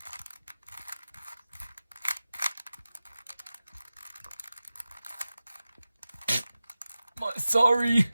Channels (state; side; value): inverted; both; correlation -0.95